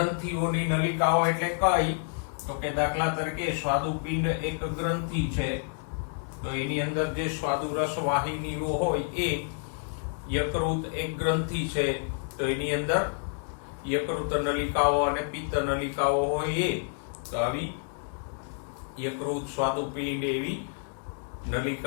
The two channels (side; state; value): right; silent; 59 dB below the other